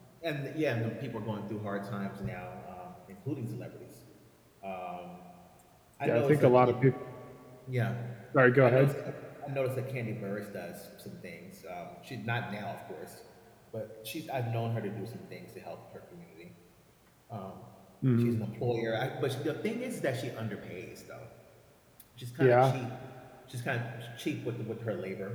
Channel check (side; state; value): both; identical; correlation 1.00